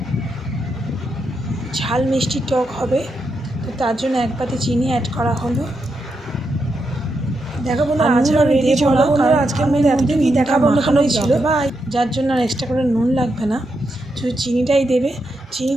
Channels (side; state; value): both; normal; correlation 0.83